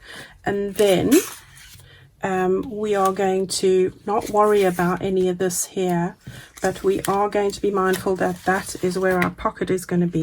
And then we are going to not worry about any of this here, but we are going to be mindful that that is where our pocket is going to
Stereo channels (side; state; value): both; identical; correlation 1.00